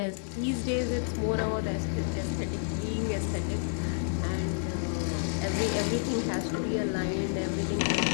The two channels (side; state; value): right; silent; 58 dB below the other